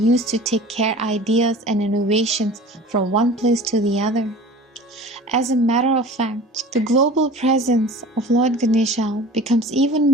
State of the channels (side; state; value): both; normal; correlation 0.40